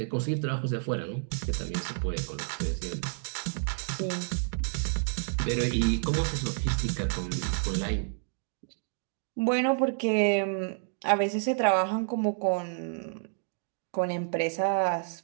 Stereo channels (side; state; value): left; silent; digital silence